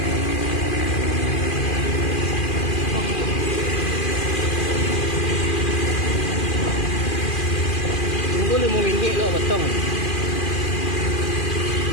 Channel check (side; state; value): right; late; 2.4 ms